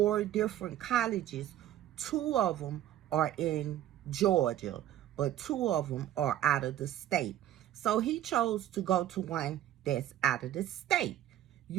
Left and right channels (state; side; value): quieter; left; 12.4 dB